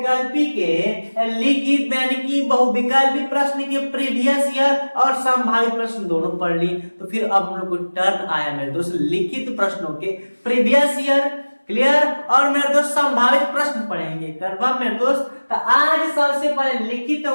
के लिखित यानी कि बहुविकल्पी प्रश्न के प्रीवियस ईयर और संभावित प्रश्न दोनों पढ़ लिए, तो फिर अब हम लोग को टर्न आया मेरे दोस्त लिखित प्रश्नों के प्रीवियस ईयर। क्लियर? और मेरे दोस्त संभावित प्रश्न पढ़ेंगे। कंफर्म मेरे दोस्त? तो आज सबसे पहले लिखित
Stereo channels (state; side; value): inverted; both; correlation -1.00